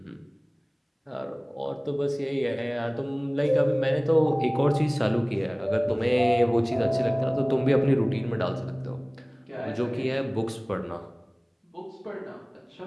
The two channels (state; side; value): identical; both; correlation 1.00